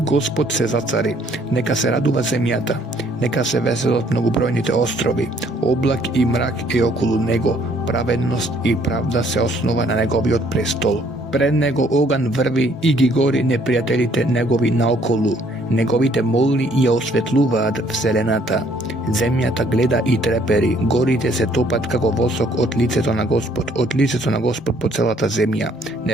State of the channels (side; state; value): both; normal; correlation 0.63